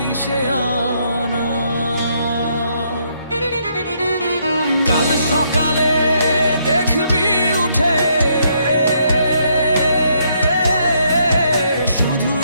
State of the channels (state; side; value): inverted; both; correlation -0.73